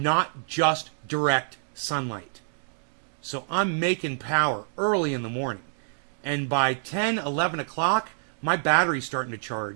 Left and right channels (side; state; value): left; silent; digital silence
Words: just direct sunlight. So I'm making power early in the morning. And by 10, 11 o'clock, my battery's starting to